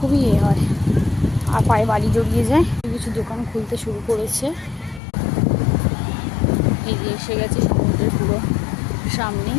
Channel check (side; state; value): right; drops out; at 5.0 s